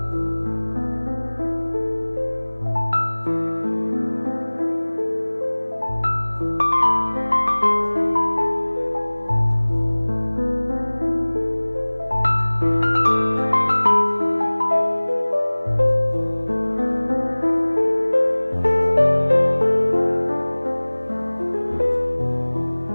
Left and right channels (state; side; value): inverted; both; correlation -1.00